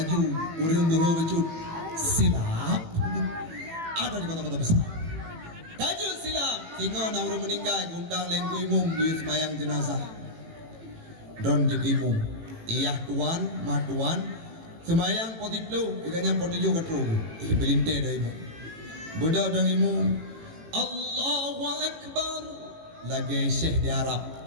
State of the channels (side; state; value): left; late; 18 ms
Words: urung gue becut silap ada di kota-kota besar kaju silap tinggal na urung meninggal gundang lengku imum gue semayang jenazah don jek imum iyah tuan matuan semayang potiplu ikanya potijo katru belinte dah imum budak dan imum Allahu Akbar. Lagi Syekh di Arab,